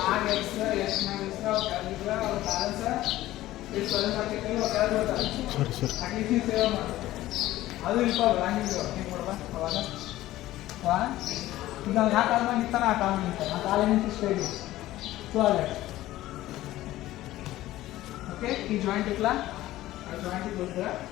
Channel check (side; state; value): right; quieter; 15.6 dB